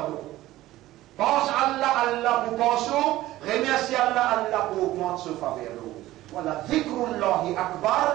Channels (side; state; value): left; quieter; 16.0 dB